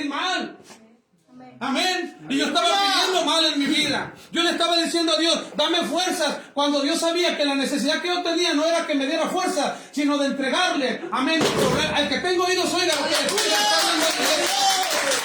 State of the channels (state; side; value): identical; both; correlation 1.00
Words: mal. Amén. Y yo estaba pidiendo mal en mi vida. Yo le estaba diciendo a Dios, dame fuerzas, cuando Dios sabía que la necesidad que yo tenía no era que me diera fuerza, sino de entregarle. Amén. Al que tengo oídos oiga lo que le estoy hablando.